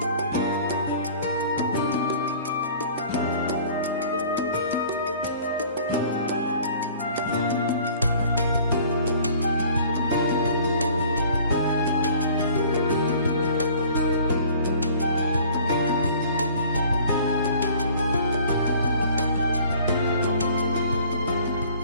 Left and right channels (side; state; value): both; inverted; correlation -0.50